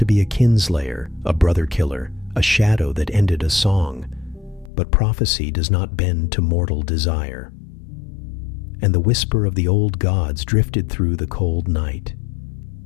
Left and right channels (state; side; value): drops out; right; at 4.7 s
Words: be a kinslayer, a brother killer, a shadow that ended a song. But prophecy does not bend to mortal desire. And the whisper of the old gods drifted through the cold night.